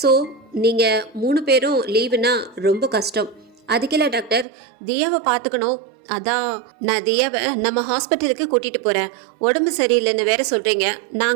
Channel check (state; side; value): drops out; left; at 4.5 s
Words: நீங்கள் 3 பேரும் லீவுனா ரொம்ப கஷ்டம். அதுக்கெல்லாம் டாக்டர், தியாவை பார்த்துக்கணும், அதான் நான் தியாவை நம்ம ஹாஸ்பிட்டலுக்கு கூட்டிகிட்டு போகிறேன். உடம்பு சரியில்லைன்னு வேற சொல்கிறீங்க.